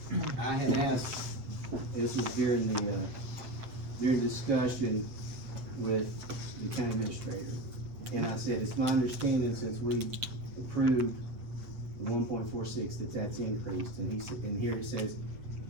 I had asked, this was during the, during discussion with the county administrator. And I said, it's my understanding since we approved the 1.46 that's increased. And he said, and here it says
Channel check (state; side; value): late; left; 7.8 ms